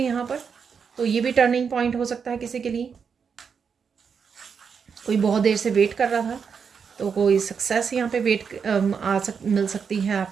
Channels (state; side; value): quieter; left; 6.3 dB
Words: पर, तो ये भी टर्निंग पॉइंट हो सकता है किसी के लिए। कोई बहुत देर से वेट कर रहा था, तो कोई सक्सेस यहाँ पे मिल सकती है